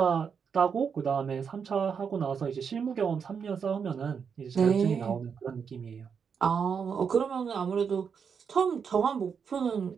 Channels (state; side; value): quieter; left; 6.5 dB